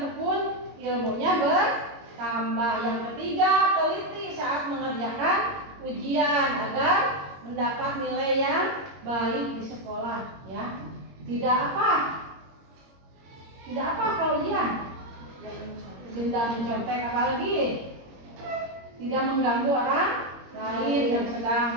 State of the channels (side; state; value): left; late; 22 ms